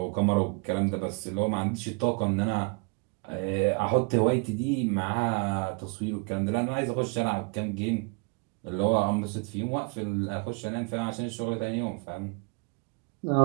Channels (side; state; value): left; quieter; 32.1 dB